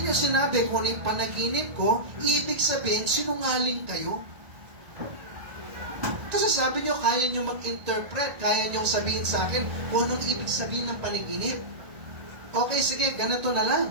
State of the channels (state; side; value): late; left; 1.4 ms